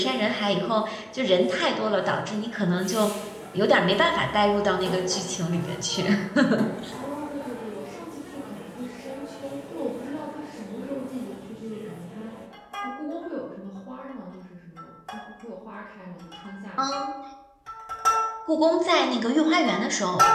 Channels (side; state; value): both; identical; correlation 1.00